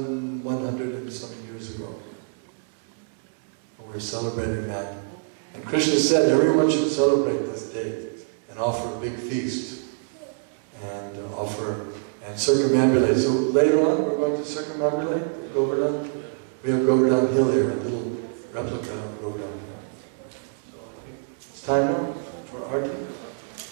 and some years ago. We're celebrating that. And Krishna said everyone should celebrate this day and offer a big feast and circumambulate. So later on we're going to circumambulate Govardhan. We have Govardhan Hill here, a little replica of Govardhan Hill. So I think it's time now for arti.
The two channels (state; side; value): silent; left; 61 dB below the other